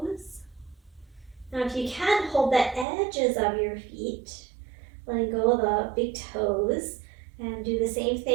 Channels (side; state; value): left; drops out; at 2.9 s